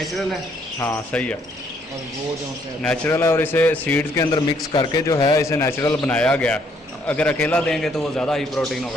है। हाँ सही है, और वो जो नेचुरल है। और इसे सीड्स के अंदर मिक्स करके जो है इसे नेचुरल बनाया गया। अगर अकेला देंगे तो वो ज़्यादा हाई प्रोटीन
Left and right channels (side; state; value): both; normal; correlation 0.68